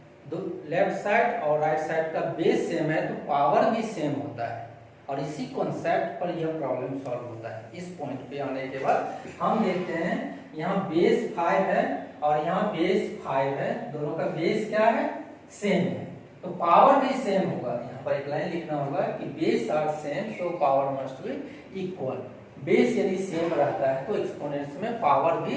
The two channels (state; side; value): identical; both; correlation 1.00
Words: लेफ्ट साइड और राइट साइड का बेस सेम है तो पावर भी सेम होता है। और इसी कॉन्सेप्ट पर यह प्रॉब्लम सॉल्व होता है। इस पॉइंट पे आने के बाद हम देखते हैं यहाँ बेस 5 है और यहाँ बेस 5 है, दोनों का बेस क्या है, सेम है, तो पावर भी सेम होगा। यहाँ पर एक लाइन लिखना होगा कि base are same so power must be equal. Base यदि सेम रहता है तो एक्सपोनेंट्स में पावर भी